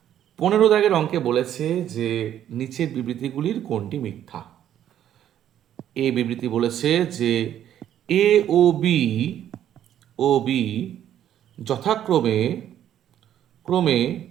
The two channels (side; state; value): left; quieter; 10.8 dB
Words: 15 দাগের অঙ্কে বলেছে যে নিচের বিবৃতিগুলির কোনটি মিথ্যা? এ বিবৃতি বলেছে যে এ ও বি যথাক্রমে